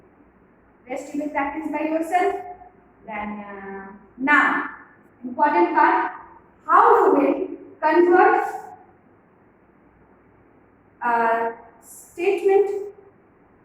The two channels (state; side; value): identical; both; correlation 1.00